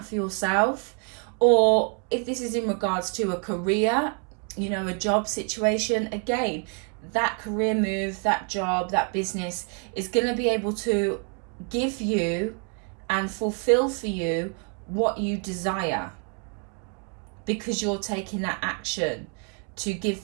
for yourself. Or if this is in regards to a career, a job situation, again, that career move, that job, that business is going to be able to give you and fulfill for you what you desire, because you're taking that action to give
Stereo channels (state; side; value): quieter; left; 39.3 dB